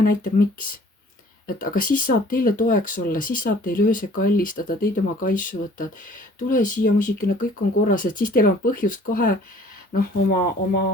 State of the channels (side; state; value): both; normal; correlation 0.53